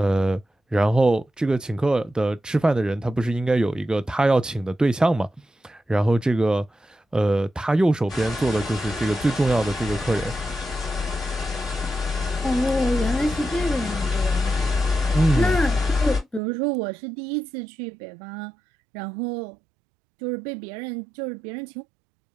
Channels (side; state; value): left; drops out; at 16.4 s